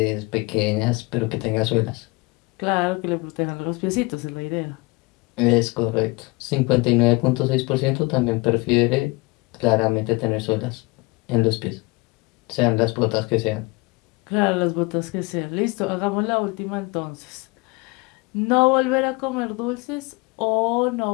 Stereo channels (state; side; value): quieter; right; 25.4 dB